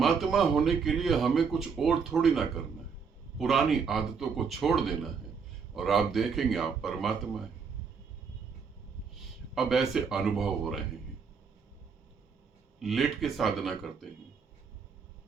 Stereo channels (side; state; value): left; quieter; 5.8 dB